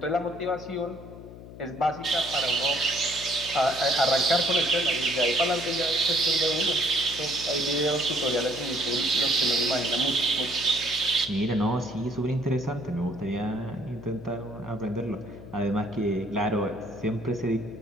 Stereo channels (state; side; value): noise; left; hum, 15 dB below the sound